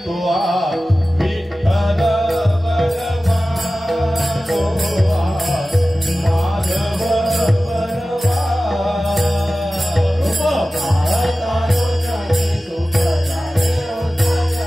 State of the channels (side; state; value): both; normal; correlation 0.96